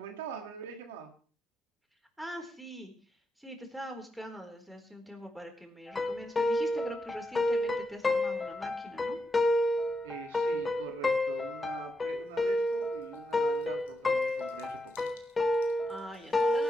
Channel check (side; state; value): both; normal; correlation 0.85